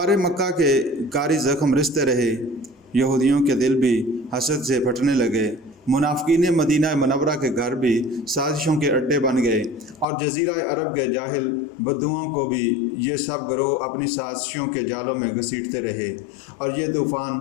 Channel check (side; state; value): right; drops out; at 10.1 s